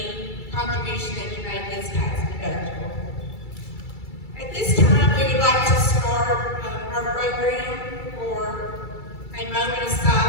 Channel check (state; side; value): late; right; 2.3 ms